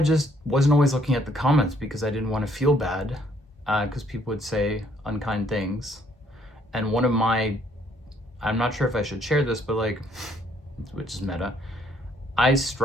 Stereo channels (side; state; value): both; normal; correlation 0.66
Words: wasn't always looking at the comments because I didn't want to feel bad because people would say unkind things. And one of my, I'm not sure if I should share this, but like, which is meta, I